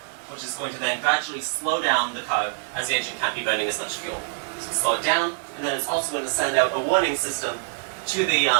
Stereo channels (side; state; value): left; silent; digital silence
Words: which is going to then gradually slow down the car as the engine can't be burning as much fuel. So slow it down, and then it's also going to send out a warning system to the